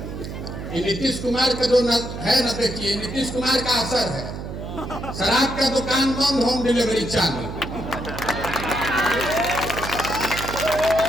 नीतीश कुमार का जो है ना, देखिए नीतीश कुमार का असर है। शराब का दुकान बंद, होम डिलीवरी चालू।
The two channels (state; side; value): noise; right; hum, 8 dB below the sound